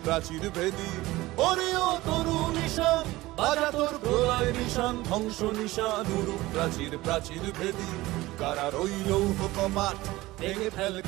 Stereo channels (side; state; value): left; quieter; 18.7 dB